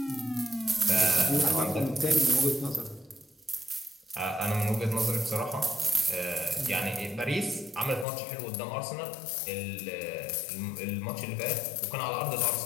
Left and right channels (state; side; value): drops out; right; at 8.1 s